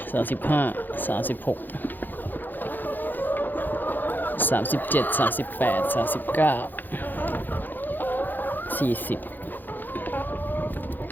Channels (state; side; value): late; right; 0.088 ms